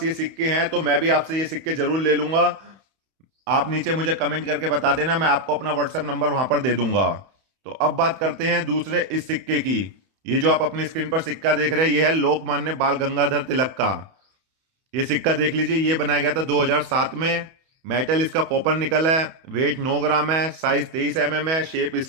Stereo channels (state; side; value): late; left; 31 ms